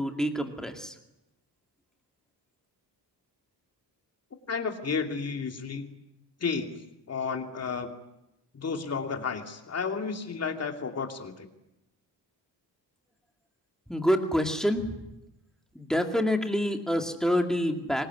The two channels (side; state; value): both; normal; correlation 0.62